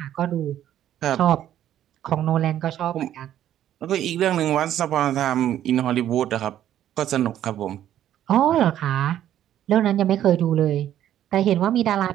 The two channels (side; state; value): left; quieter; 11.5 dB